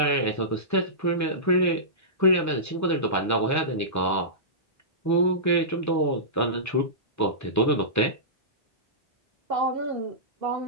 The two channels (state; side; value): normal; both; correlation -0.18